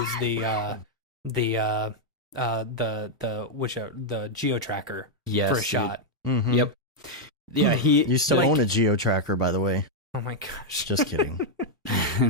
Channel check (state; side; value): normal; both; correlation -0.02